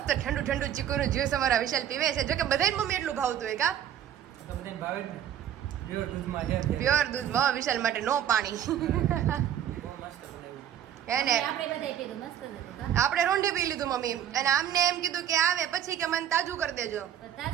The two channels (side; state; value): left; quieter; 10.3 dB